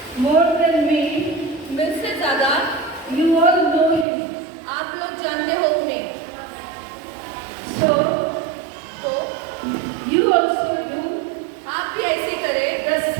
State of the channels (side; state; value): left; drops out; at 4.0 s